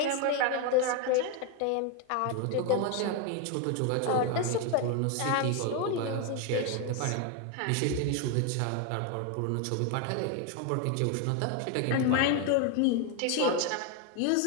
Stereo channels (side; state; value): both; different; correlation 0.01